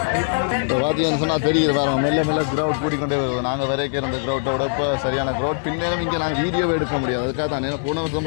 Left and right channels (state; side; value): silent; right; 65 dB below the other